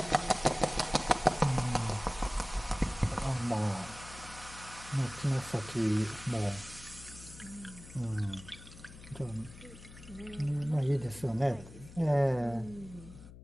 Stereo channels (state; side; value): noise; left; hum, 17 dB below the sound